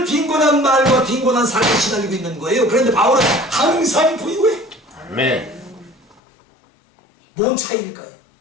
빈곤한 말과 빈곤한 삶에 시달리고 있는 거예요. 그런데 바울은 항상 부유해. 뭔 차이일까요?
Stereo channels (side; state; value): right; drops out; at 6.2 s